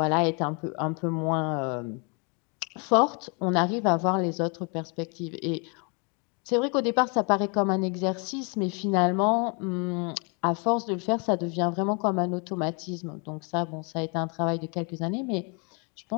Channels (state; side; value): quieter; right; 34.6 dB